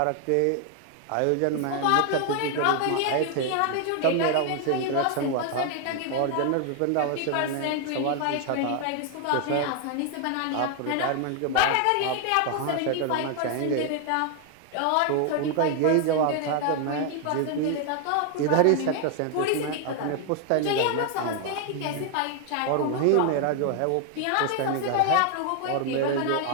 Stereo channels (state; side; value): different; both; correlation 0.00